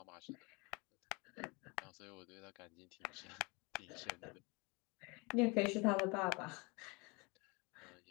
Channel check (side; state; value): right; quieter; 28.5 dB